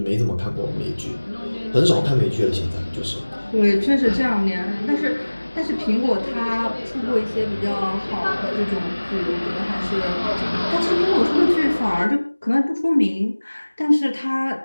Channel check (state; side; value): inverted; both; correlation -1.00